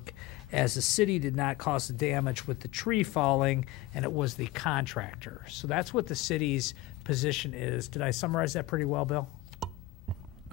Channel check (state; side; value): quieter; right; 17.1 dB